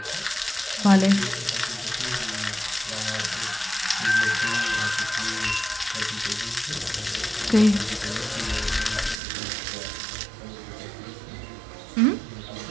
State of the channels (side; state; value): left; drops out; at 9.2 s